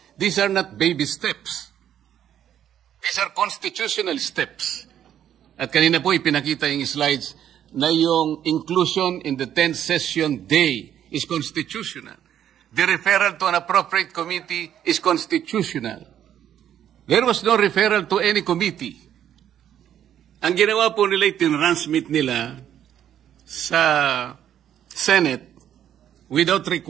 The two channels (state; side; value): quieter; left; 10.3 dB